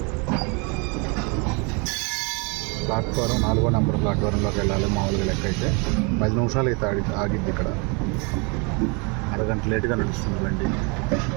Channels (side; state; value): left; quieter; 32.0 dB